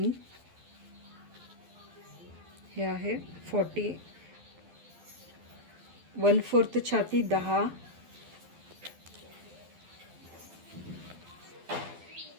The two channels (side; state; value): left; late; 12 ms